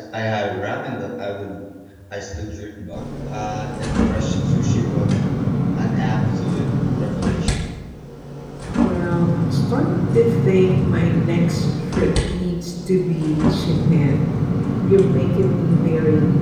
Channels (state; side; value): identical; both; correlation 1.00